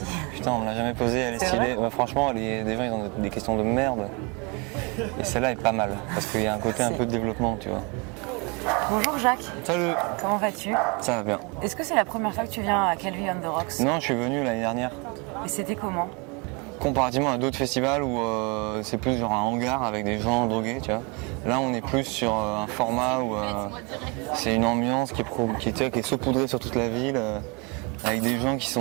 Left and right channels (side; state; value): left; quieter; 30.0 dB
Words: Putain, on me l'a jamais posée, elle est stylée. Ouais, franchement, des gens ils ont des questions de merde. Et celle-là est pas mal, parce qu'il y a un côté un peu de développement, tu vois. Bonjour Jacques. Salut. Comment vas-tu? Ça va bien. Est-ce que c'est la première fois que tu viens à Calvi on the Rocks? Non, je suis venu l'année dernière. Et c'était comment? Comparativement à d'autres festivals où c'est plus genre un hangar avec des gens drogués, tu vois. Là, on est plus sur un format où c'est une ambiance qui est saupoudrée sur toute la ville, avec des gens qui